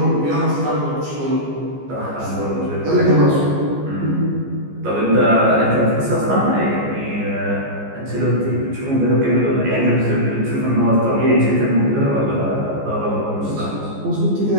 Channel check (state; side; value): late; left; 14 ms